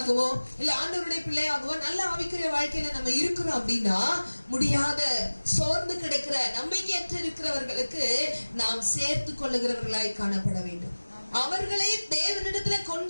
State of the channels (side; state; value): both; inverted; correlation -1.00